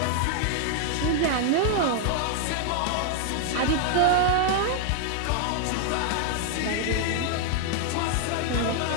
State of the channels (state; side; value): different; both; correlation 0.00